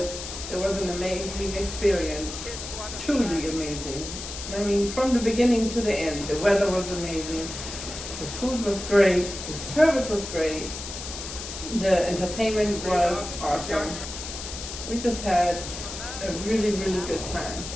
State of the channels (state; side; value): noise; left; hiss, 8 dB below the sound